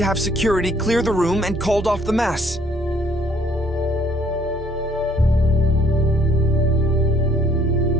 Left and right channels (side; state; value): both; normal; correlation 0.63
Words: have security clear the room and called off the mass.